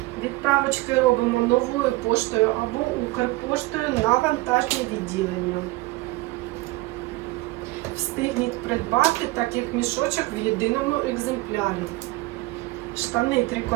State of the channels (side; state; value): left; quieter; 20.8 dB